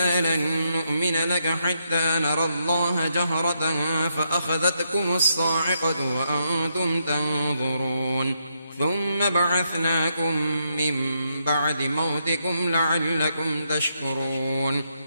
لن نؤمن لك حتى نرى الله جهرة فأخذتكم الصاعقة وأنتم تنظرون ثم بعثناكم من بعد موتكم لعلكم تشكرون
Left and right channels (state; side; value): inverted; both; correlation -0.79